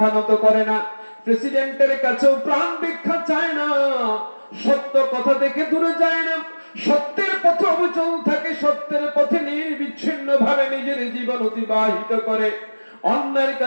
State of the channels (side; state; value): both; inverted; correlation -1.00